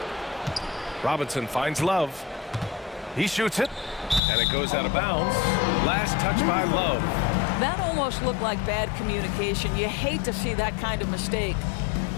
Robinson finds Love. He shoots it, and it goes out of bounds. Last touch by Love. That almost looked like bad communication. You hate to see that kind of mistake.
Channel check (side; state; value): right; drops out; at 4.2 s